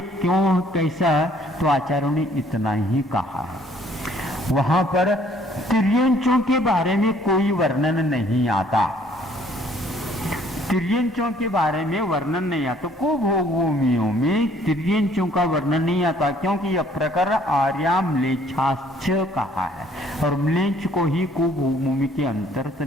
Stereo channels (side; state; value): both; normal; correlation 0.60